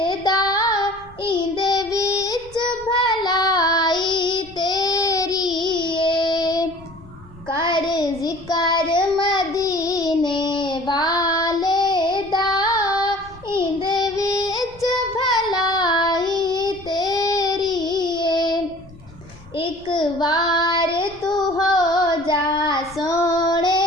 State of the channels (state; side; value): noise; left; rumble, 22 dB below the sound